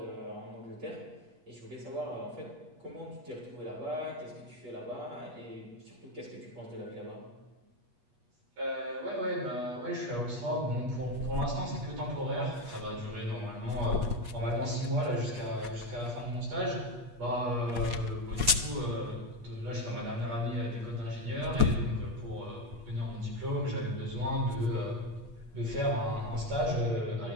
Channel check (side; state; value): left; late; 8.3 ms